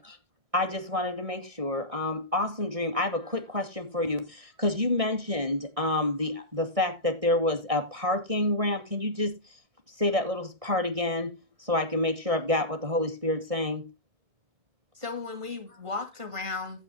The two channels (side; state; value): left; late; 1.6 ms